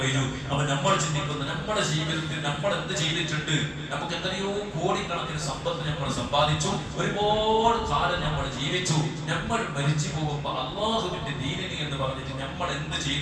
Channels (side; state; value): both; identical; correlation 1.00